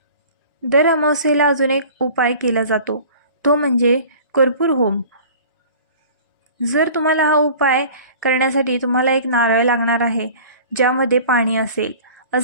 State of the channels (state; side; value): inverted; both; correlation -0.44